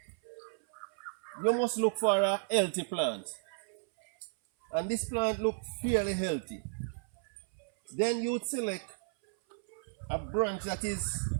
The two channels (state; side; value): silent; left; 55 dB below the other